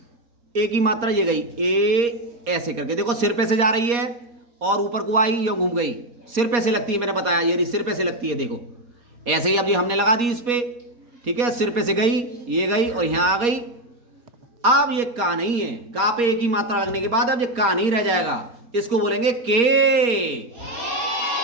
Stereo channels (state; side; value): late; left; 4.2 ms